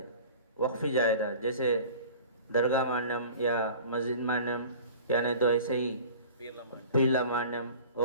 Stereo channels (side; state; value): both; inverted; correlation -0.42